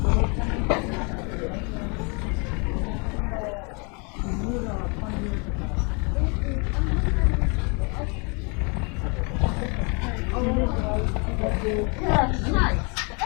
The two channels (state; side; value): quieter; right; 33.3 dB